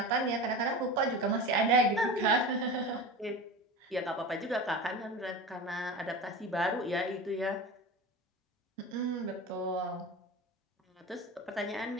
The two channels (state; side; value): normal; both; correlation 0.31